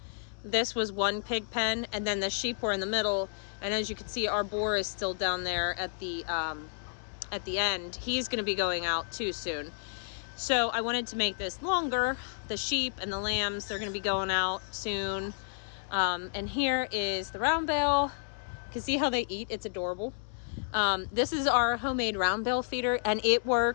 This was one pig pen, and then the sheep were in the middle. And as you can see, our boar is still down there at the end. He's going to be going out too soon. So I wanted to make this longer. The sheep and the lambs, they're going to be going out soon. And here is the round bale. You can see how they eat. It's adorable. This is our homemade round bale feeder, and it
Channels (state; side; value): silent; right; digital silence